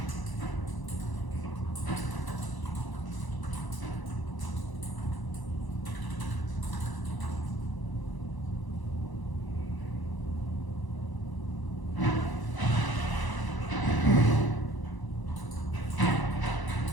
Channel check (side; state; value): right; late; 1.0 ms